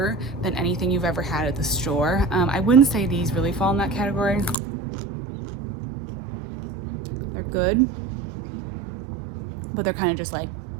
than anything you've ever had at the store. I wouldn't say these really fall in that category. They're good, but they're kind of just like,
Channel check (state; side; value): drops out; left; at 4.6 s